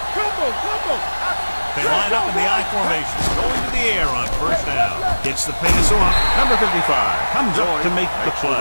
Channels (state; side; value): inverted; both; correlation -1.00